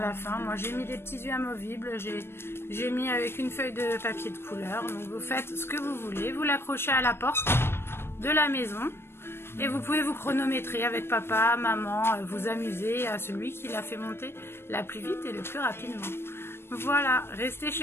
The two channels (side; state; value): right; late; 0.12 ms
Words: fin. Moi j'ai mis des petits yeux amovibles, j'ai mis avec une feuille de papier de couleur. Donc vous faites ce que vous voulez, vous l'accrochez à la porte de la maison et vous pouvez vous chronométrer avec papa, maman, vous amuser à celui qui l'a fait monter la plus vite et le plus rapidement. Voilà, restez